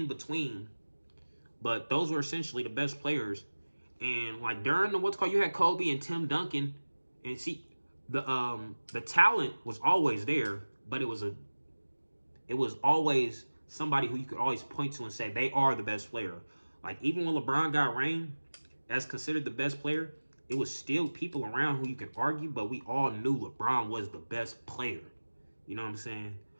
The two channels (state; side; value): inverted; both; correlation -1.00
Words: between, but those were essentially the best players. And like during the you had Kobe and Tim Duncan, and see the talent was always there, but it was always somebody who you could always point to and say they are the best player. Like, even when LeBron got reigned as considered the best player, it was still people around who you can argue, but we all knew LeBron was the best player. You know what I'm saying?